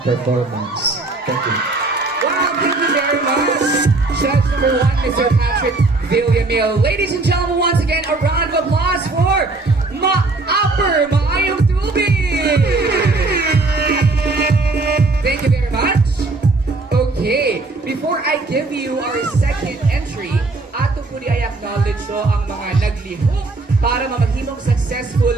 performance. Thank you. Wow, thank you very much. Judge number 1, Mr. Patrick Villamil. Ladies and gentlemen, once again, a round of applause for Upper Maayong Tubig. Thank you very much. Okay, before I give you our second entry, ato po di ay acknowledge so ang mga naglihok para mamahimong successful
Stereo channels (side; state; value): left; quieter; 3.4 dB